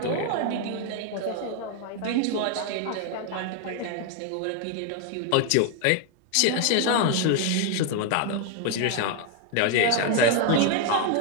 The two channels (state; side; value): different; both; correlation 0.01